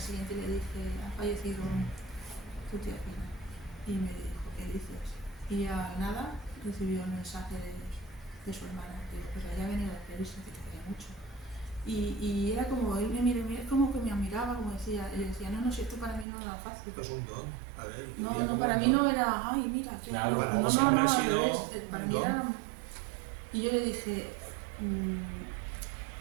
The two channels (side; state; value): left; drops out; at 16.2 s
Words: le dije, ha fallecido tu tía Fina. Y me dijo, ¿qué dices? Y al nada recibió el mensaje de su hermana. Digo, pues había venido a despedirse, que te quería mucho. Y era como, él como que me admiraba, como decía, y decía, no, si esto para mí no era fácil. Esto es un don. A ver, No, para mí no era, ay, mira, qué Claro, para no, vos no, siempre no, ha al sido revés, para un mí don. era... Y yo le dije,